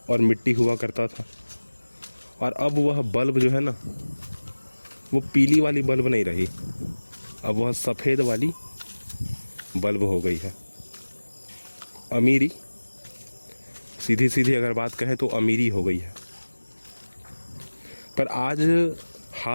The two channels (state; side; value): inverted; both; correlation -1.00